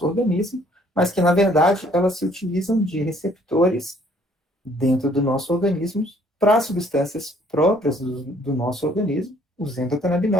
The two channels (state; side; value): normal; both; correlation 0.61